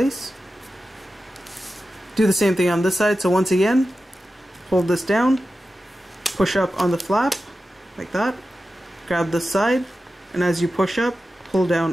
Do the same thing on this side, so once again fold this down, push up on the flap like that, grab this side, and as you push up, pull down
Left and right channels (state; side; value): normal; both; correlation 0.93